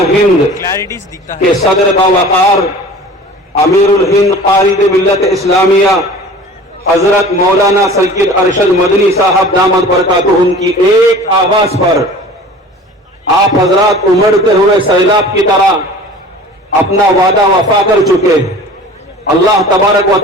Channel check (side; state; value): both; normal; correlation 0.42